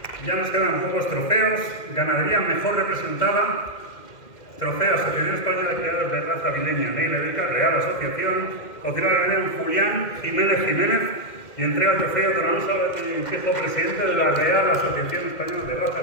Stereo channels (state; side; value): late; right; 2.1 ms